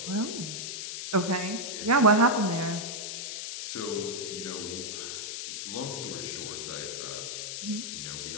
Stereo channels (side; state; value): left; noise; hiss, 5 dB below the sound